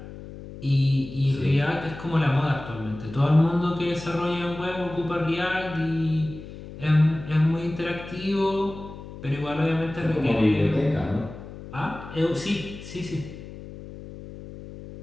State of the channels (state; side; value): noise; left; hum, 14 dB below the sound